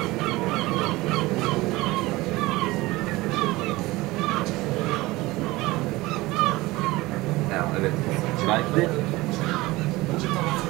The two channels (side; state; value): left; quieter; 20.3 dB